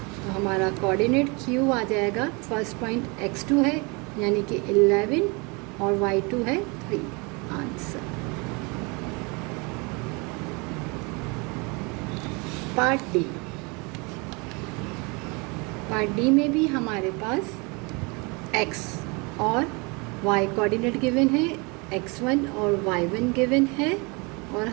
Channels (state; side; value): quieter; left; 29.3 dB